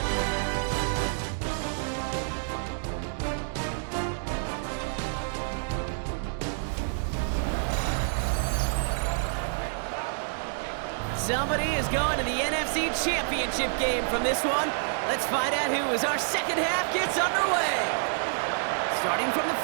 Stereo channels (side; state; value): left; silent; digital silence